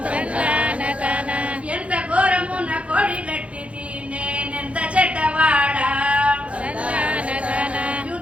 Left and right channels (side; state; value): left; late; 0.063 ms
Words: ఎంత ఘోరము నా కోడి గట్టిది నేనెంత చెడ్డవాడా,